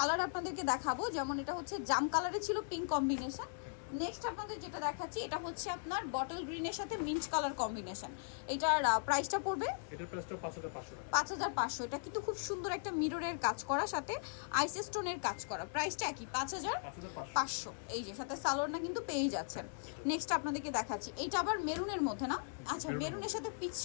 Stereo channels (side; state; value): right; silent; digital silence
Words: আপনাদেরকে দেখাবো। যেমন এটা হচ্ছে জাম কালারে ছিল পিঙ্ক কম্বিনেশন। নেক্সট আপনাদের যেটা দেখাচ্ছি, এটা হচ্ছে আপনার বটল গ্রিনের সাথে মিন্ট কালার কম্বিনেশন। এটার প্রাইসটা পড়বে, এটার প্রাইসটা 5500 টাকা। 5500। এটা কিন্তু খুব সুন্দর একটা মিররের কাজ করা, সাথে আইস স্টোনের কাজ করা। প্রাইসটা কি? 5500। এই যে সাথে সালোয়ারটা কিন্তু পেয়ে যাচ্ছেন। নেক্সট আপনাদেরকে দেখাচ্ছি, এইটা আবার মেরুনের মধ্যে না? আচ্ছা, মেরুনের সাথে পিচ